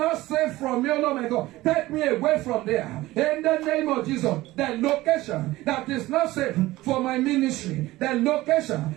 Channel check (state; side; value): quieter; left; 17.8 dB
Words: safe from you, Lord my God, take me away from there. In the name of Jesus, the location that is not safe for my ministry, the